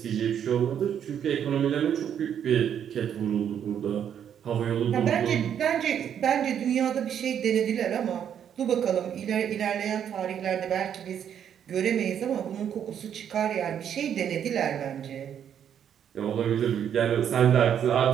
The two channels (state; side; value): quieter; left; 9.0 dB